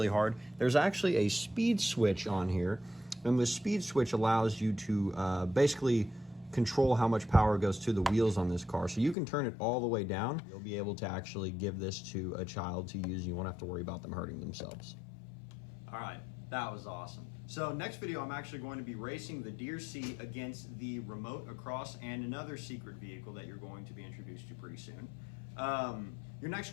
hard, there's actually a speed switch on here. And the speed switch allows you to basically control how much power goes to the wheels on this car. So you can turn it all the way down. You'll be able to actually give this to a child to use. You won't have to worry about them hurting themselves. All right, that was awesome. So next video, I'm actually going to be racing the DEERC against the remote across and another secret vehicle that you're going to be introduced to pretty soon. Your next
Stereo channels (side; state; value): right; drops out; at 9.2 s